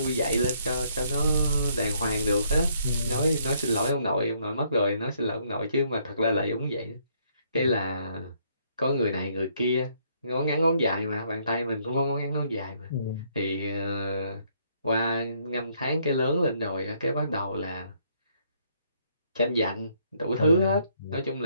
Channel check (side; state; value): both; inverted; correlation -0.69